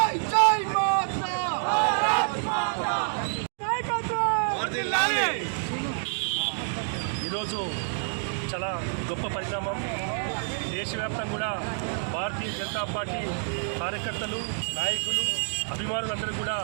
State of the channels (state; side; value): silent; left; digital silence